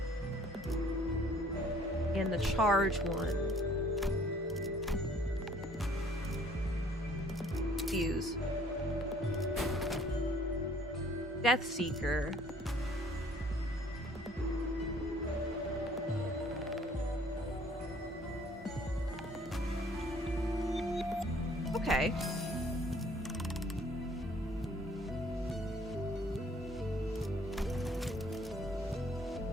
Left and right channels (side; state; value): both; normal; correlation 0.58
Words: And the charge one. Fuse. Death Seeker. Okay.